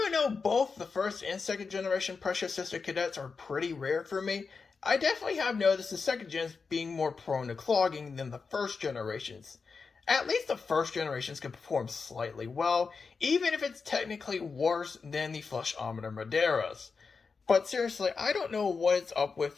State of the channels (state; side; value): quieter; right; 4.9 dB